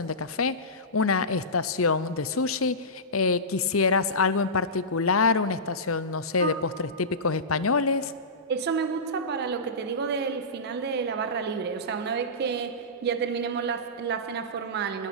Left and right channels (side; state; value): both; normal; correlation -0.19